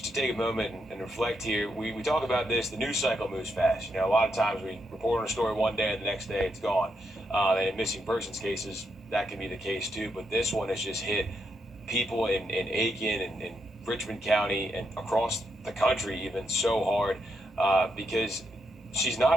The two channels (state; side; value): normal; both; correlation 0.81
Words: to take a moment and reflect here, we talk about this, the news cycle moves fast. A lot of times we report on a story one day and the next day it's gone. And in missing persons cases, that can be the case too. But this one has just hit people in Aiken and Richmond County and across the country even so hard because she's